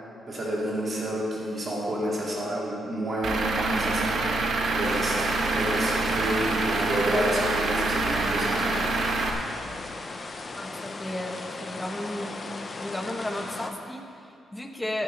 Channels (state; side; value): normal; both; correlation 0.78